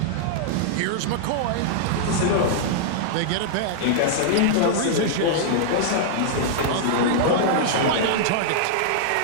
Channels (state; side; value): different; both; correlation -0.01